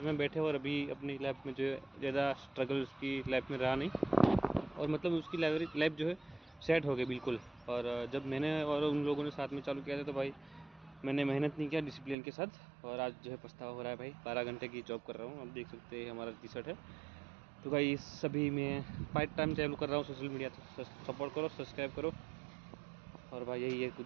में बैठे, और अभी अपनी लाइफ में जो है ज़्यादा स्ट्रगल उसकी लाइफ में रहा नहीं, और मतलब उसकी लाइफ जो है सेट हो गई बिल्कुल। और जब मैंने और उन लोगों ने साथ में चालू किया था तो भाई मैंने मेहनत नहीं किया डिसिप्लिन के साथ, और आज जो है पछतावा हो रहा है भाई। 12 घंटे की जॉब कर रहा हूँ, आप देख सकते हैं हमारा टी शर्ट है। तो भाई सभी मैं पार्ट टाइम चालू कर रहा हूँ सोशल मीडिया, तो सपोर्ट करो, सब्सक्राइब करो। और भाई यही है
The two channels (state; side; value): drops out; left; at 12.2 s